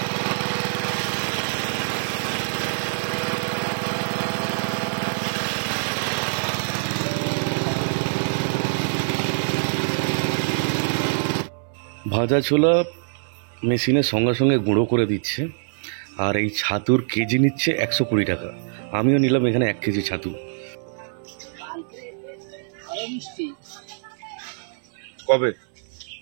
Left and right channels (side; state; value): left; silent; digital silence